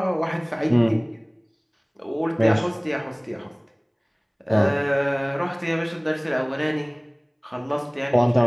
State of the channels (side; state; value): both; identical; correlation 1.00